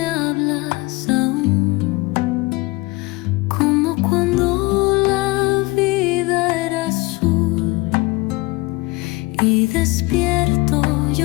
hablas aún, como cuando la vida era azul, y despierto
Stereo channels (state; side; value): quieter; right; 23.3 dB